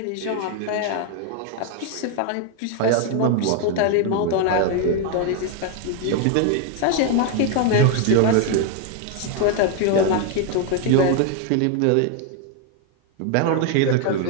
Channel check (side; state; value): both; different; correlation 0.00